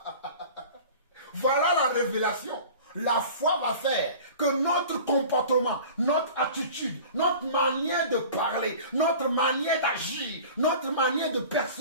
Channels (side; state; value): both; inverted; correlation -0.41